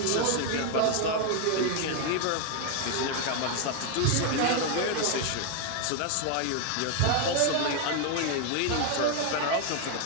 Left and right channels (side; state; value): both; different; correlation 0.01